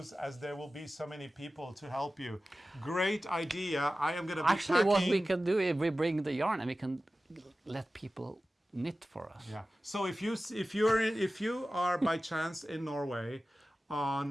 as there will be so many people to help you. Great idea. I am going to be Actually, packing. what we can do is we bring the yarn and we can let people knit for us. Yeah. So if you are by chance in Norway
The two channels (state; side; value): normal; both; correlation 0.95